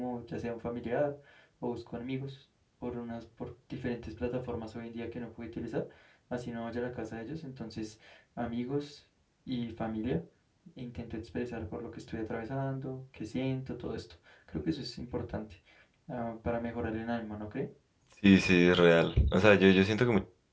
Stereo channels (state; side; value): identical; both; correlation 1.00